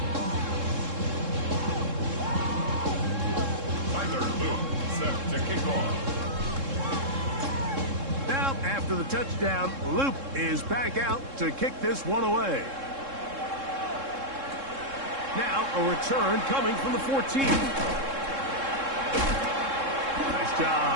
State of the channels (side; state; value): left; late; 3.7 ms